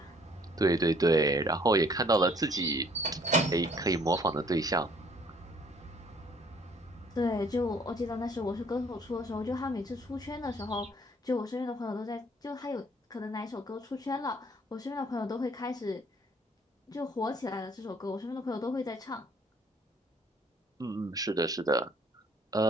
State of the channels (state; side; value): normal; both; correlation 0.60